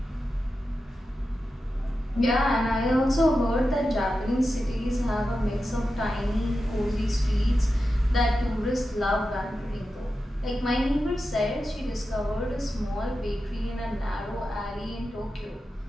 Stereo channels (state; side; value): normal; both; correlation 0.91